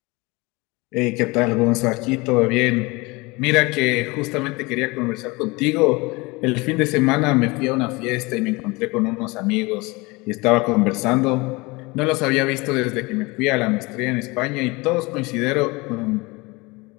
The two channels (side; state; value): right; quieter; 24.6 dB